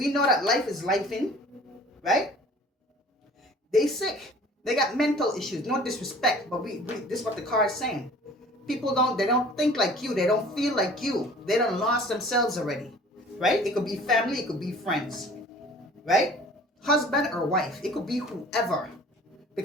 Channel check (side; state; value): both; normal; correlation 0.48